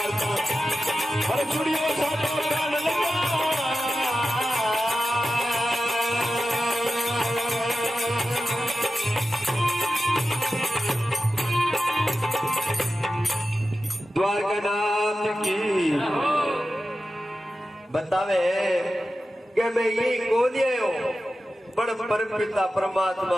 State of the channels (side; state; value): both; normal; correlation 0.93